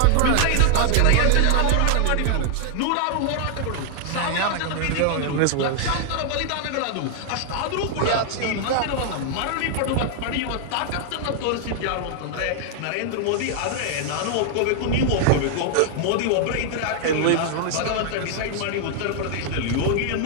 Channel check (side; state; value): both; different; correlation 0.00